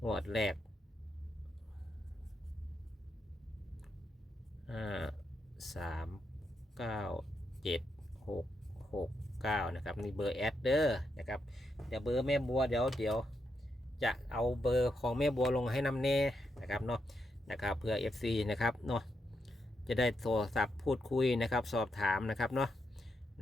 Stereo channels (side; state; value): both; normal; correlation 0.82